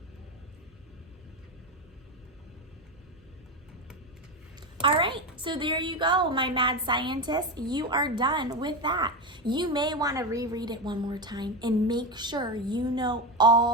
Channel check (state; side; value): normal; both; correlation 0.16